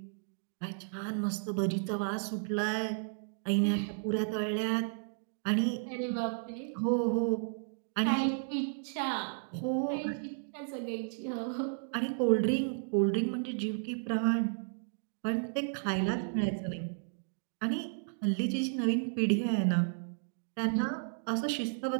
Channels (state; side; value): silent; left; digital silence